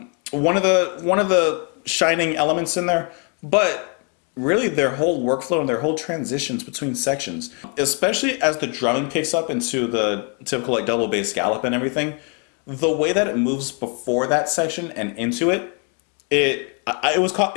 of the shining elements in there. But really, their whole workflow and their whole transitions between sections, especially as the drumming picks up into the typical like double bass gallop and everything, the way that it moves before that section and into it, it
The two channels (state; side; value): quieter; right; 36.7 dB